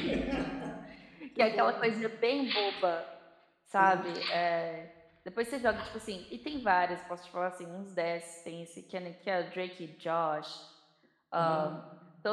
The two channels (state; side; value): identical; both; correlation 1.00